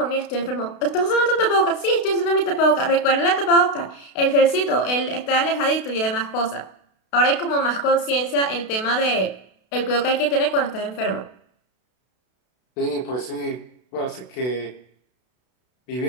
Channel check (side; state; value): right; late; 32 ms